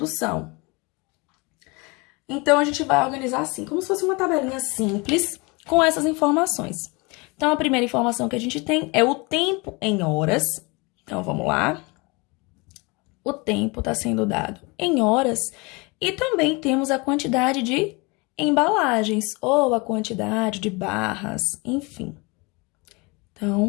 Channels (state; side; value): quieter; right; 27.3 dB